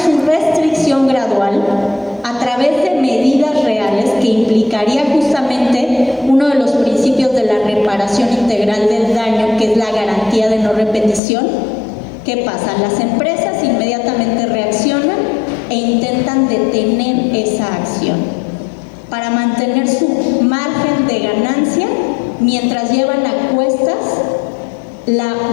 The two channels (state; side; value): drops out; right; at 11.2 s